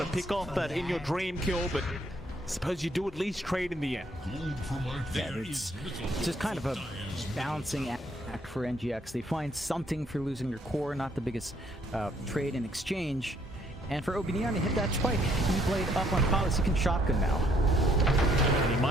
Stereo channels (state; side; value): normal; both; correlation 0.67